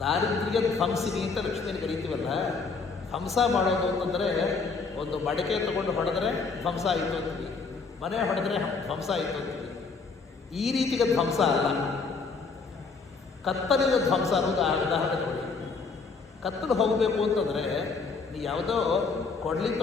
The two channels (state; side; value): quieter; right; 4.6 dB